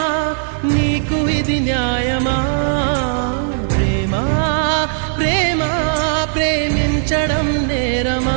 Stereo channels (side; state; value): left; silent; digital silence